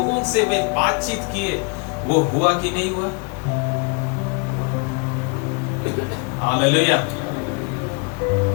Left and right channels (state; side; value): quieter; right; 32.0 dB